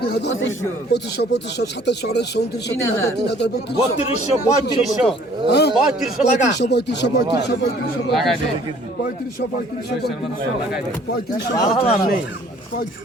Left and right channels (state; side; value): normal; both; correlation 0.56